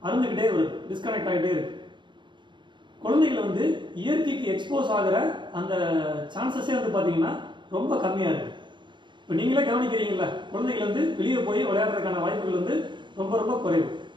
அருந்துகிட்டே வருது, டிஸ்கனெக்ட் ஆகிட்டே இருக்கு. குழந்தைகள் வந்து இயற்கைக்கு எக்ஸ்போஸ் ஆகிற அந்த சான்சஸே வந்து பார்த்தீங்கன்னா ரொம்ப கம்மியாக இருக்குது. இப்போ நீங்களே கவனிக்கிறீங்களா, குழந்தைகள் வந்து வெளியே போய் விளையாடுறதுக்கான வாய்ப்புகள் வந்து ரொம்ப ரொம்ப குறைவு.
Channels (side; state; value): left; late; 0.22 ms